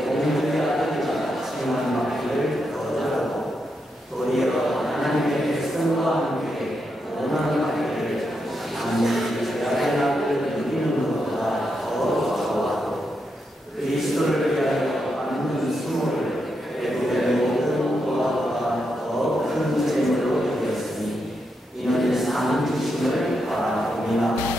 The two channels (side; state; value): both; normal; correlation 0.83